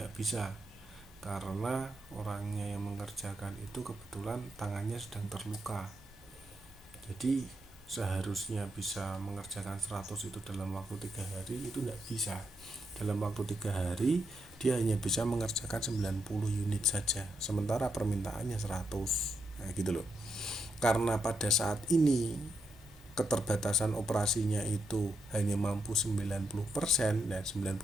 bisa karena orangnya yang mengerjakan itu kebetulan tangannya sedang terluka. Jadi seharusnya bisa mengerjakan 100 itu dalam waktu 3 hari, itu tidak bisa. Dalam waktu 3 hari dia hanya bisa mengerjakan 90 unit saja, sementara permintaannya 100. Nah gitu loh. Karena pada saat ini keterbatasan operasinya itu hanya mampu 90%, dan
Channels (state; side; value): normal; both; correlation 0.81